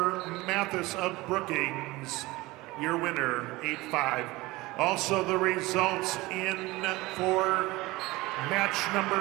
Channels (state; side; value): quieter; left; 20.6 dB